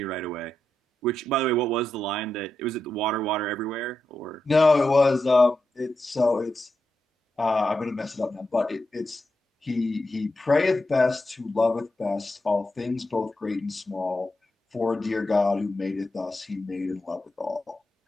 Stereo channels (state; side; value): normal; both; correlation 0.87